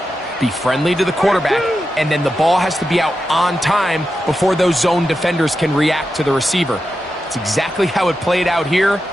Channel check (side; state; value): both; normal; correlation 0.89